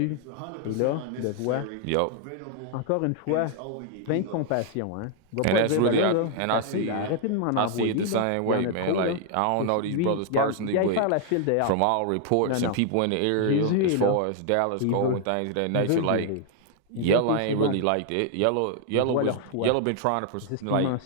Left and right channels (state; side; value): different; both; correlation 0.00